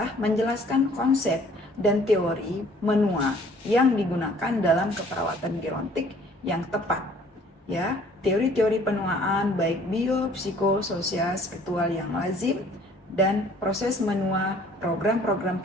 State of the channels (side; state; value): both; normal; correlation 0.56